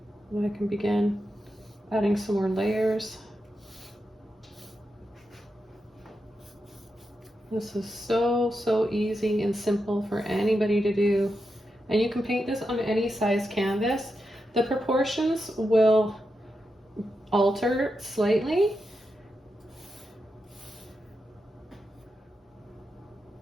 And I can begin adding some more layers. This is so easy and simple for anybody to do. And you can paint this on any size canvas. The proportions will alter slightly.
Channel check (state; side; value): normal; both; correlation 0.87